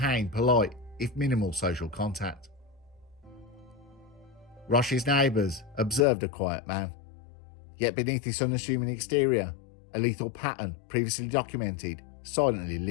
polite, if minimal, social contact. Roche's neighbours observed a quiet man, yet beneath his unassuming exterior, a lethal pattern previously documented silently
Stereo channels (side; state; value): right; drops out; at 6.1 s